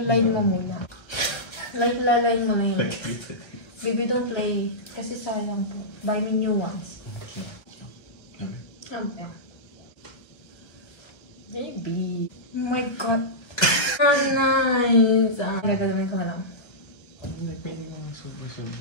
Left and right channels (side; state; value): right; late; 1.4 ms